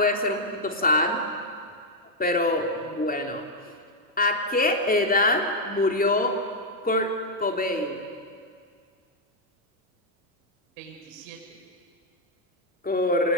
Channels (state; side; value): normal; both; correlation -0.02